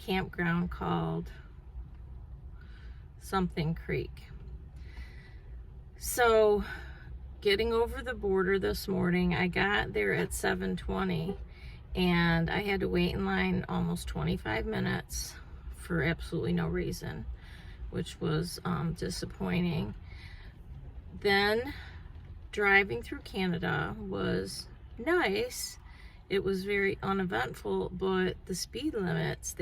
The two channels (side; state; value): both; identical; correlation 1.00